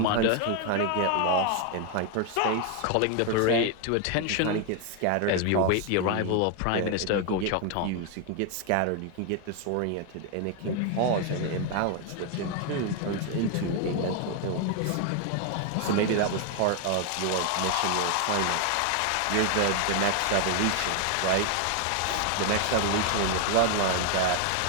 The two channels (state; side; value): different; both; correlation 0.01